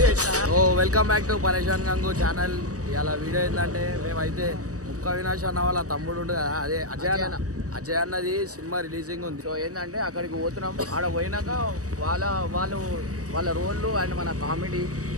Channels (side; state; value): left; late; 0.66 ms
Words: వెల్కమ్ బ్యాక్ టు పరేషాన్ గంగు ఛానల్. ఇలా వీడియో ఏంటంటే మేమైతే ముక్క అవినాష్ అన్న వాళ్ళ తమ్ముడు ఉండు కదా, అదే అజయ్ అన్నది సినిమా రిలీజింగ్ ఉంది. సో ఏంటంటే అక్కడికి పోతున్నాం. ఆడ పోయినాక వాళ్ళ రోళ్ళు అండ్ మన కామెడీ